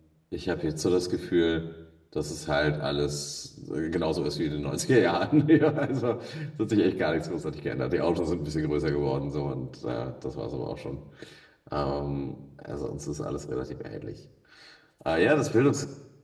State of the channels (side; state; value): both; identical; correlation 1.00